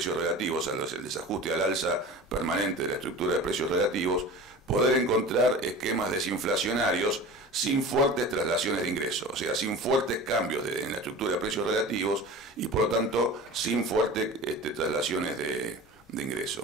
relativos, el desajuste al alza permanente de la estructura de precios relativos, poder encontrar esquemas desinflacionarios sin fuertes traslaciones de ingresos, o sea, sin fuertes cambios en la estructura de precios relativos y por lo tanto sin fuertes traslaciones de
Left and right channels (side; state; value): both; normal; correlation 0.36